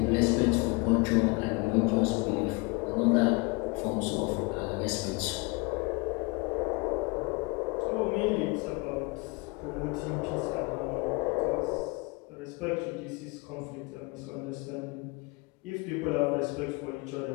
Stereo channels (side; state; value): right; quieter; 27.9 dB